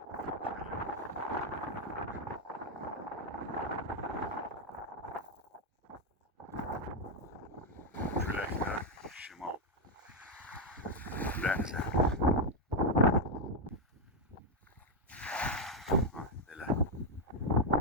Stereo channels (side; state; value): both; normal; correlation 0.03